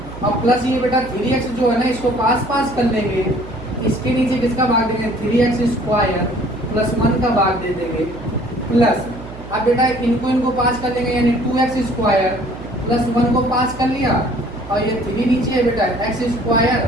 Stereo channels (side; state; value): right; noise; hum, 15 dB below the sound